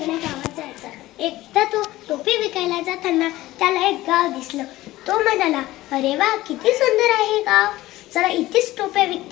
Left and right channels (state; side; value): quieter; right; 17.0 dB